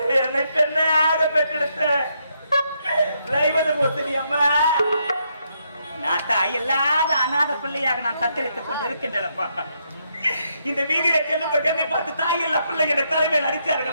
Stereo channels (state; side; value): inverted; both; correlation -0.77